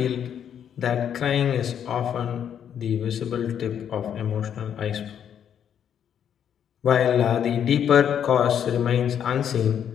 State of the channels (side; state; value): right; quieter; 8.9 dB